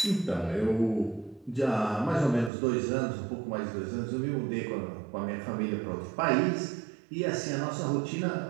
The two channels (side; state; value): left; drops out; at 2.5 s